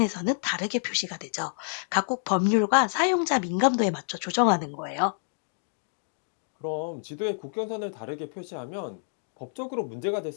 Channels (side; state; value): right; silent; digital silence